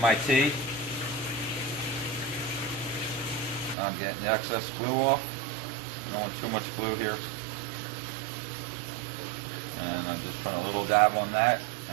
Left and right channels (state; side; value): drops out; left; at 3.8 s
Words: T. I'm getting the excess glue off. I don't want too much glue here. And I'm just putting a little dab on that,